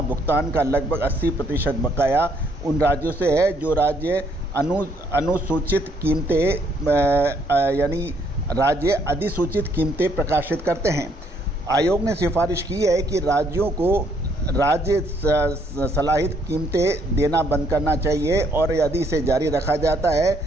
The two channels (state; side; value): normal; both; correlation 0.69